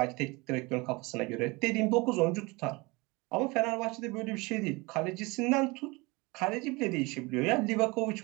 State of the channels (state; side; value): quieter; left; 25.3 dB